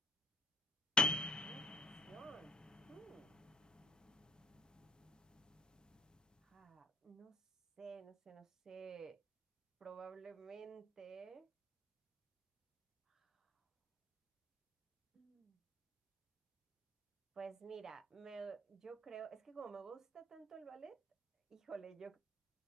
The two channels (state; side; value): normal; both; correlation 0.58